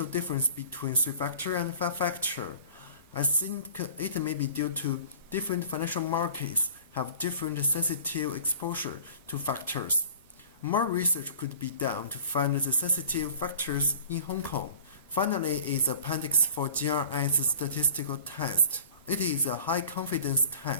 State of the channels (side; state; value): both; inverted; correlation -0.45